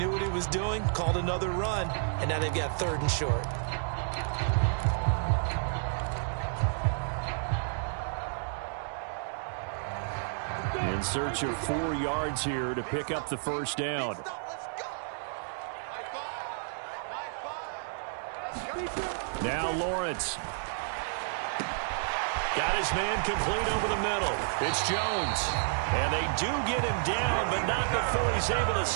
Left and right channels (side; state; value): left; silent; digital silence